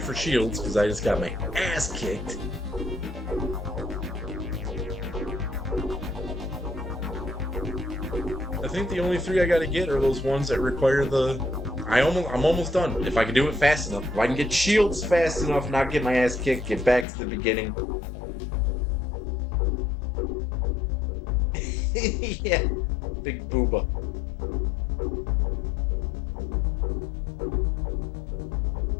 for shields because I just got my ass kicked. I think the only three I gotta get are those ones that require the. I'm almost done. If I can do it fast enough, if I can get shields fast enough, not get my ass kicked, get back to the beginning. Yeah, big booba.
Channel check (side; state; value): right; drops out; at 17.1 s